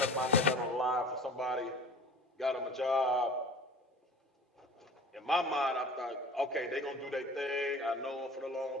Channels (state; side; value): normal; both; correlation 0.42